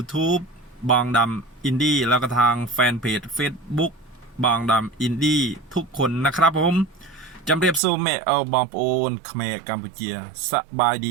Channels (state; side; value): drops out; left; at 7.8 s